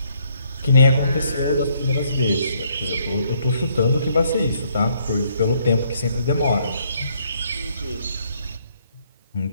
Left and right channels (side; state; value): both; inverted; correlation -0.69